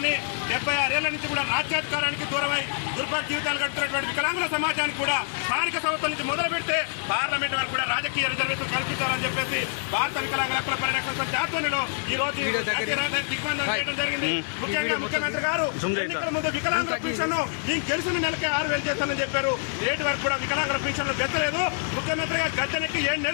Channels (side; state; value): right; silent; 61 dB below the other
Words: 76 ఏళ్ల నుంచి కూడా రాజ్యాధికారానికి దూరమై దుర్భర జీవితాలు గడుపుతున్నటువంటి వికలాంగుల సమాజానికి కూడా స్థానిక సంస్థల నుంచి మొదలు పెడితే పార్లమెంట్ వరకు కూడా రాజకీయ రిజర్వేషన్ కల్పించాలని చెప్పేసి భారత వికలాంగుల హక్కుల పరిరక్షణ సమితి ఆధ్వర్యంలో ఈ రోజు దిగ్బంధం చేయడం జరిగింది. ముఖ్యంగా ముఖ్యమంత్రి గారు ఎన్నికల ముందు వికలాంగుల పెన్షన్ గెలిచిన నెలకే 6,000 చేస్తానని చెప్పారు. నేటి వరకు కూడా వికలాంగుల పెన్షన్లు బెత్తలేదు. ముఖ్యమంత్రిగా గద్దెనెక్కి 7